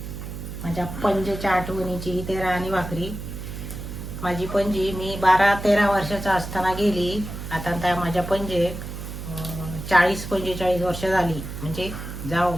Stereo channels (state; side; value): noise; right; hum, 8 dB below the sound